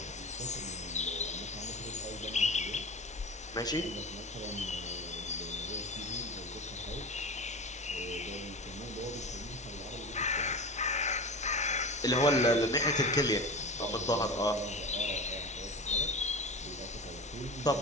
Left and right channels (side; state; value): both; normal; correlation 0.30